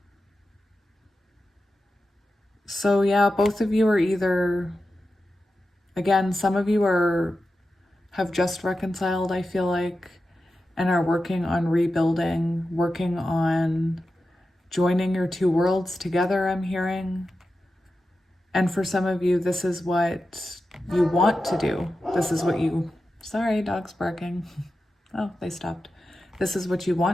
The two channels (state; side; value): normal; both; correlation 0.92